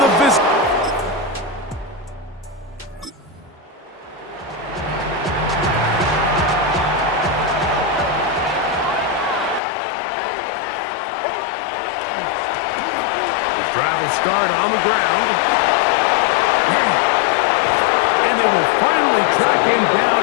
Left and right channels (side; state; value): right; drops out; at 9.6 s